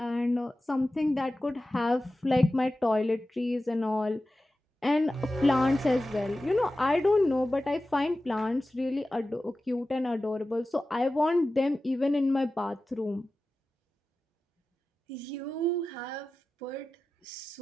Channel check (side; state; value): both; normal; correlation 0.94